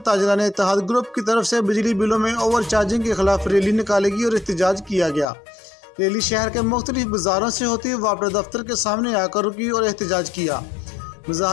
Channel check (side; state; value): right; drops out; at 5.2 s